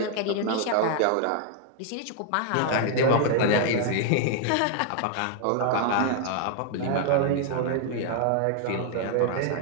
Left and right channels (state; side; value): different; both; correlation 0.00